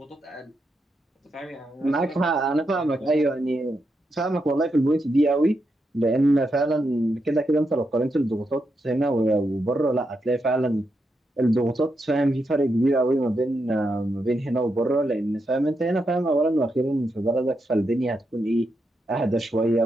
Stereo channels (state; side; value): normal; both; correlation 0.84